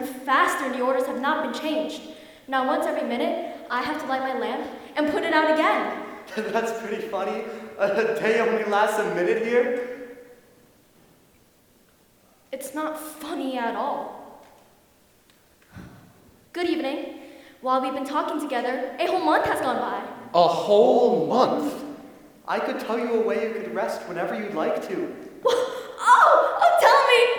faster and the orders have not been changed. Now once every minute, I have to light my lamp and put it out again. That's pretty funny. A day only lasts a minute here? It's not funny at all. Good evening. While we've been talking together, a whole month has gone by. A whole month? I could tell you a way you could rest whenever you'd like to.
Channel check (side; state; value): both; identical; correlation 1.00